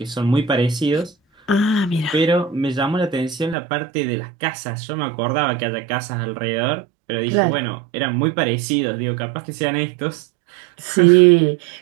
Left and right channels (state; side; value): drops out; left; at 3.6 s